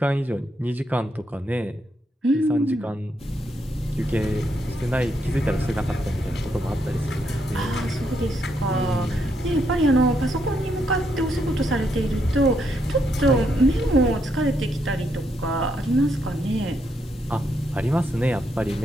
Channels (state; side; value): normal; both; correlation 0.77